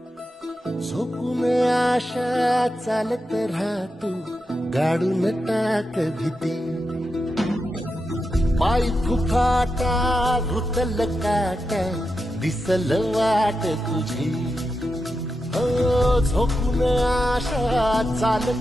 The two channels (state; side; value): normal; both; correlation 0.88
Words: झोपून आशा चालत राहतो गाडून टाक भीती पाय फुफाटा रुतल काटा दिसल वाट तुझी हो झोपून आशा